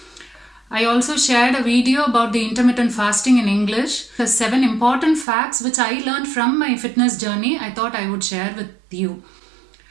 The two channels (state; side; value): drops out; left; at 5.2 s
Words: I also shared a video about the intermittent fasting in English. The 7 important facts which I learned from my fitness journey I thought I would share with you.